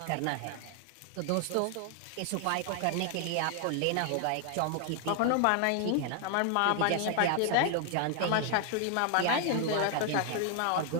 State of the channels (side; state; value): both; different; correlation 0.00